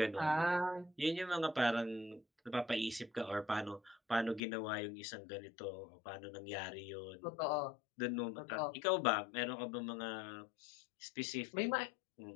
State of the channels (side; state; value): right; drops out; at 4.4 s